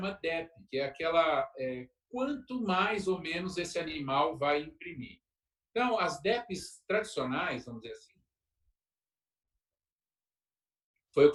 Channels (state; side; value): identical; both; correlation 1.00